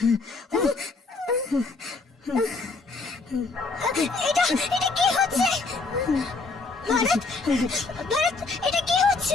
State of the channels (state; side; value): quieter; right; 3.8 dB